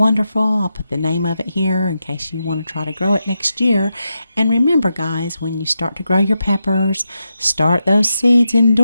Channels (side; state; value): both; inverted; correlation -0.87